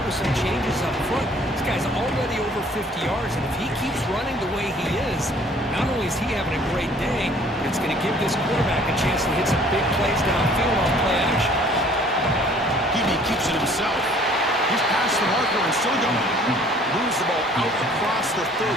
with some changes up front. This guy's already over 50 yards, and if he keeps running the way he is, not only is he having a great day, but it's going to give this quarterback a chance to hit some big plays downfield on play action. He keeps it himself. He's past the marker and still going. Moves the ball out across the 30.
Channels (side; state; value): both; normal; correlation 0.55